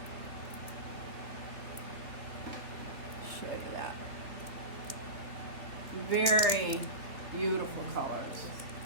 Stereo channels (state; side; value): late; left; 2.9 ms